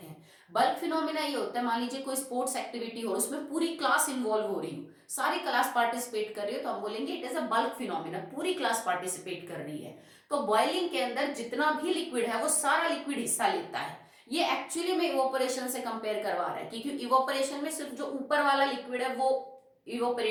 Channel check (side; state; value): both; identical; correlation 1.00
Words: हैं। बल्क फिनोमिना ये होता है, मान लीजिए कोई स्पोर्ट्स एक्टिविटी हो, उसमें पूरी क्लास इन्वॉल्व हो रही हो, सारी क्लास पार्टिसिपेट कर रही हो, तो हम बोलेंगे it is a bulk phenomena, पूरी क्लास पार्टिसिपेट कर रही है। तो बॉइलिंग के अंदर जितना भी लिक्विड है वो सारा लिक्विड हिस्सा लेता है। ये एक्चुअली में इवोपरेशन से कंपेयर करवा रहा है, क्योंकि इवोपरेशन में सिर्फ जो ऊपर वाला लिक्विड है वो